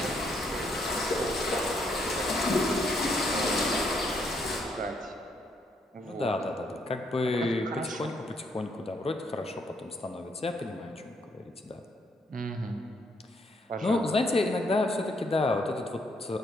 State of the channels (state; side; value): normal; both; correlation 0.72